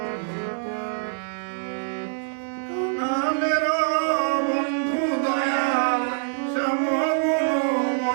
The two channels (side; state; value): left; silent; 57 dB below the other